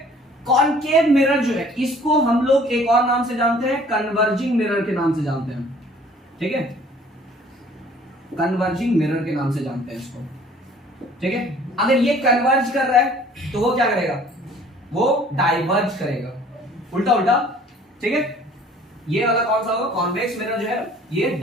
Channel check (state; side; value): normal; both; correlation 0.53